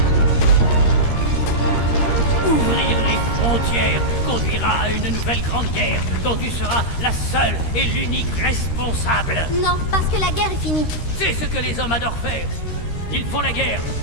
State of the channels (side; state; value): right; late; 13 ms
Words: Ouvrir les frontières conduira à une nouvelle grande guerre dont tu seras la seule et l'unique responsable. Non, parce que la guerre est finie. C'est ce que les hommes adorent faire. Ils font la guerre,